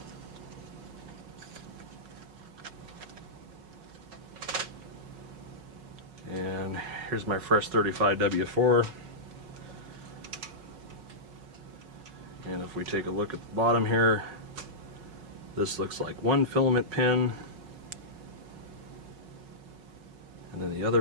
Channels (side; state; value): left; late; 5.0 ms